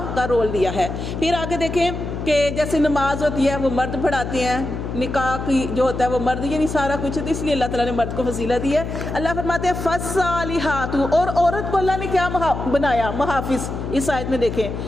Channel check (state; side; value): noise; left; hum, 5 dB below the sound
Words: کا رول دیا ہے۔ پھر آگے دیکھیں کہ جیسے نماز ہوتی ہے وہ مرد پڑھاتے ہیں، نکاح کی جو ہوتا ہے وہ مرد، یعنی سارا کچھ ہوتا ہے، اس لیے اللہ تعالیٰ نے مرد کو فضیلت دی ہے۔ اللہ فرماتے ہیں فالصالحات، اور عورت کو اللہ نے کیا بنایا؟ محافظ۔ اس آیت میں دیکھیں